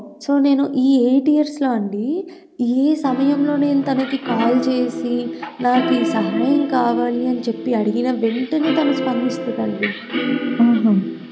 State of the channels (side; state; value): both; identical; correlation 1.00